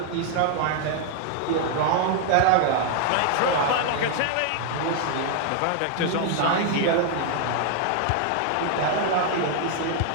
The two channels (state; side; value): different; both; correlation 0.00